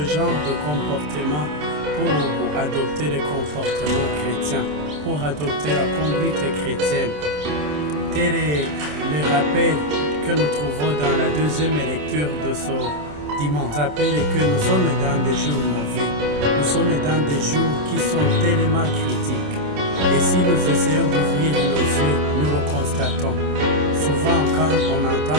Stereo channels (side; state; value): left; late; 27 ms